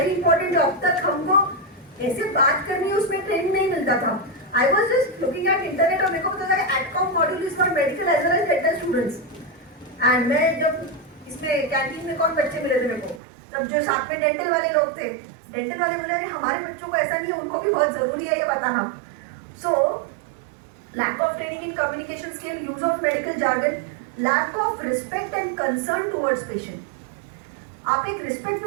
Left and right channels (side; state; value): left; drops out; at 13.2 s